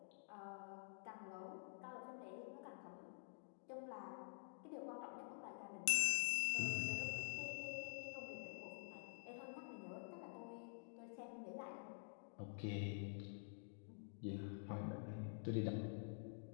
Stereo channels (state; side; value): silent; right; digital silence